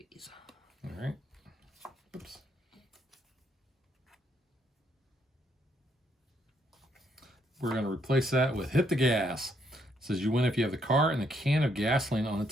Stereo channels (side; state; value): both; normal; correlation 0.73